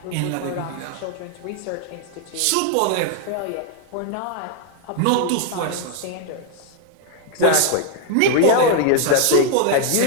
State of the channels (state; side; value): different; both; correlation 0.00